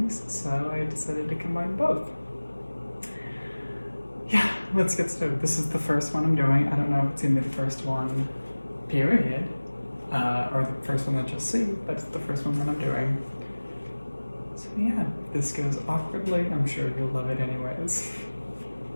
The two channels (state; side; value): inverted; both; correlation -1.00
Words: so I decided to combine both. Yeah, let's get started. This is the first one I'm doing. I don't know if it's gonna be the first one, period, or the first one that you'll see, but it's the first one that I'm doing. So yeah, if this goes awkwardly, I'm sure you'll love it anyways.